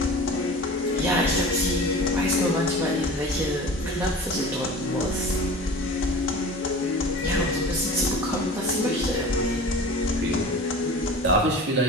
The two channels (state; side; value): normal; both; correlation 0.38